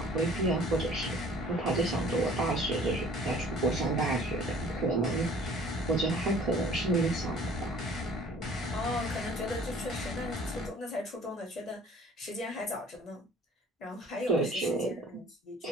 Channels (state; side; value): normal; both; correlation 0.51